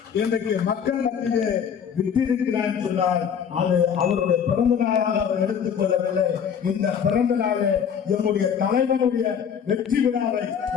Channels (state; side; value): quieter; right; 7.6 dB